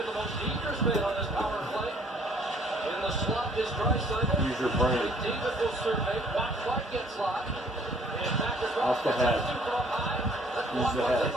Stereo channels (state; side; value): normal; both; correlation 0.59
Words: the most dangerous man on this power play. In the slot is Draisaitl. Use your brain. McDavid will survey. Watch Clark gets locked. And back across Off the head. Letestu from up high. That's Use the blocked by head.